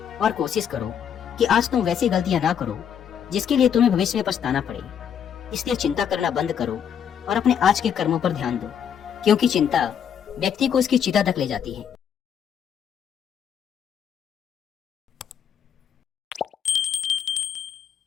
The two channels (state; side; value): quieter; right; 8.3 dB